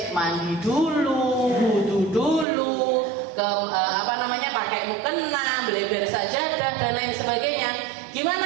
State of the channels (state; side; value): drops out; left; at 2.5 s